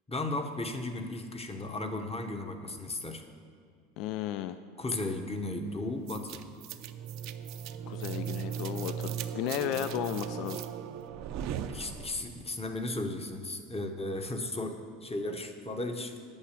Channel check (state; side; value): normal; both; correlation 0.37